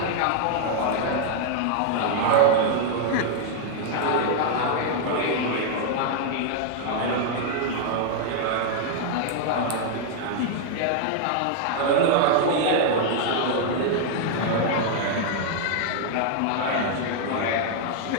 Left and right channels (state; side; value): different; both; correlation 0.00